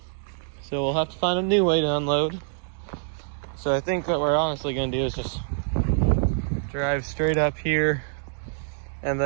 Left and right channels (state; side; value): silent; left; digital silence